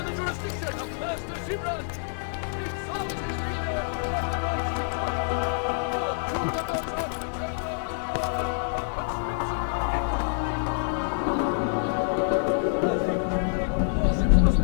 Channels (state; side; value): silent; right; digital silence